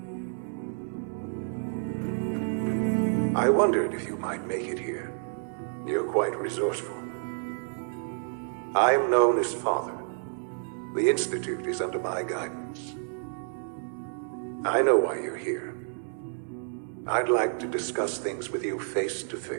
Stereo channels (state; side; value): silent; left; digital silence